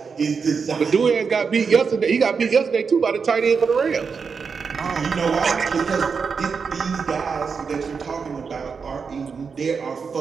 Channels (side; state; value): left; quieter; 5.6 dB